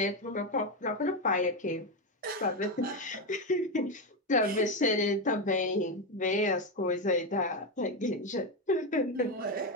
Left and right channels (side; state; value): both; normal; correlation 0.10